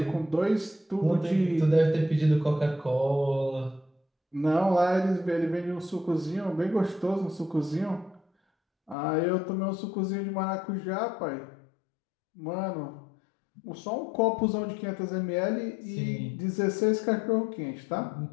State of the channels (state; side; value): drops out; right; at 9.0 s